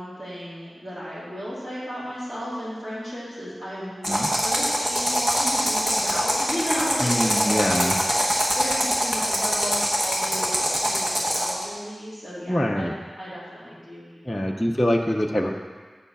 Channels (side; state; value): both; normal; correlation 0.95